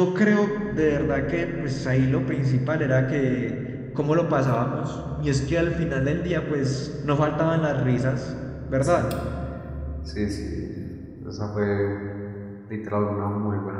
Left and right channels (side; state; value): both; identical; correlation 1.00